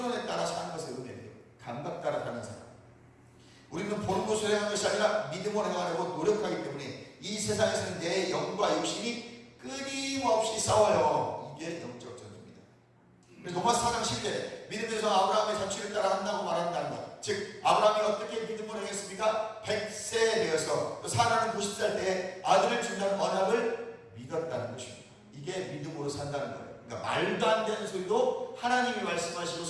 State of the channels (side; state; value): both; identical; correlation 1.00